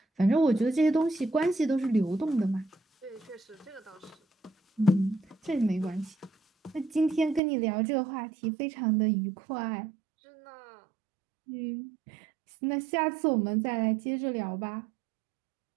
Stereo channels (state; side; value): drops out; left; at 7.4 s